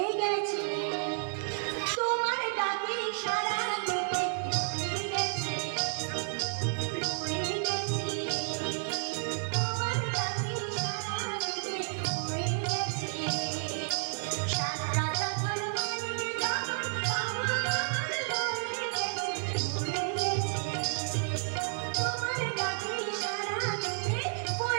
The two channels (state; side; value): silent; left; 56 dB below the other